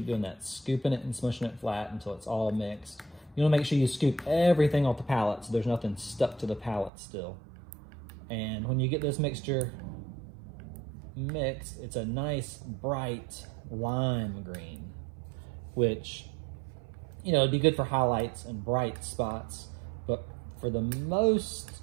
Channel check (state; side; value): drops out; left; at 6.9 s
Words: doing that, scooping it and smushing it flat until it's all mixed. You want to make sure you scoop everything off the palette so there's nothing stuck to the palette still. And when you get this mixture mixed, it's a nice bright lime green, which, you know, it'd be good for highlights and bright spots, but for the most